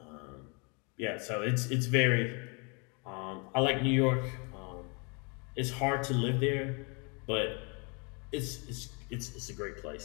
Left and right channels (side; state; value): right; quieter; 33.4 dB